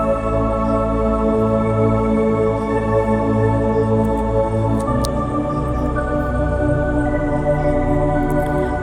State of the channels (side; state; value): both; identical; correlation 1.00